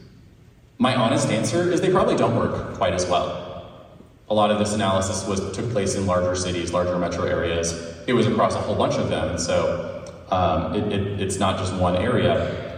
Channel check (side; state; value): both; identical; correlation 1.00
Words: My honest answer is they probably don't work quite as well. A lot of this analysis took place in larger cities, larger metro areas. It was across a whole bunch of them, and so it's not just one area.